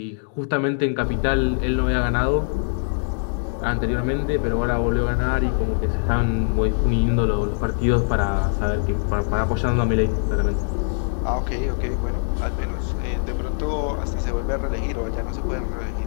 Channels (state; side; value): silent; right; digital silence